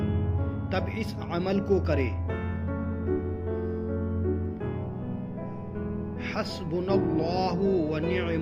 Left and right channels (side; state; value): both; identical; correlation 1.00